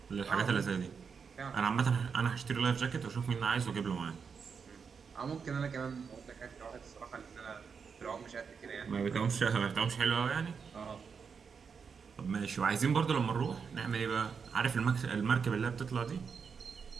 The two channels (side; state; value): left; quieter; 6.0 dB